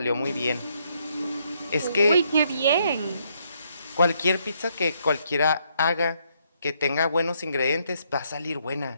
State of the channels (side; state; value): both; inverted; correlation -0.73